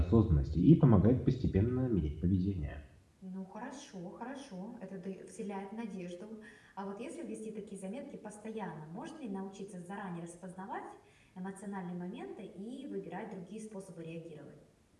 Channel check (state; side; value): identical; both; correlation 1.00